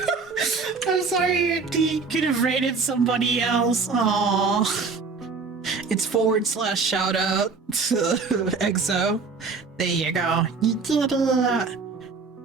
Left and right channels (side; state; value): left; quieter; 4.7 dB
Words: I'm sorry you could have rated somebody else. Aww. It's / shout out to EXO. There you go. You did it.